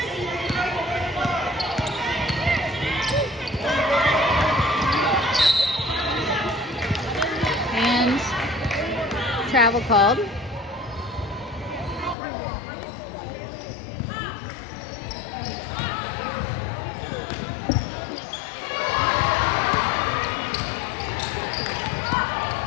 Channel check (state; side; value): drops out; right; at 12.2 s